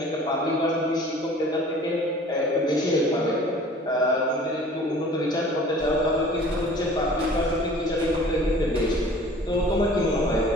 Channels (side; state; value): both; normal; correlation 0.48